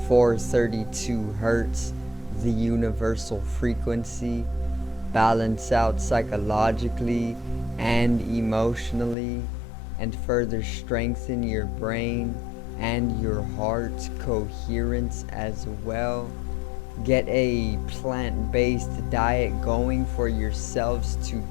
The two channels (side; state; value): right; drops out; at 9.2 s